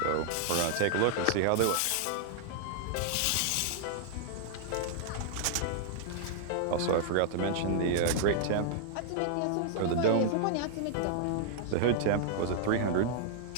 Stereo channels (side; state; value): both; different; correlation -0.01